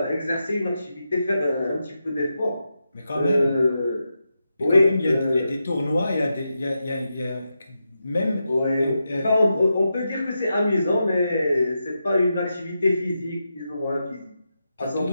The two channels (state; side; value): inverted; both; correlation -0.88